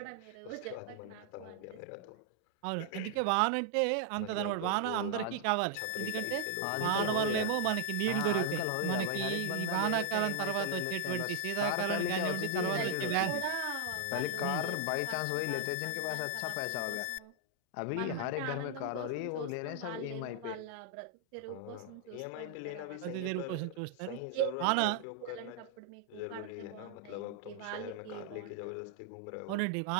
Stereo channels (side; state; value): both; different; correlation 0.00